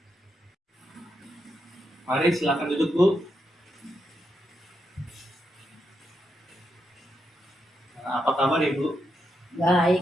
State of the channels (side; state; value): both; normal; correlation 0.82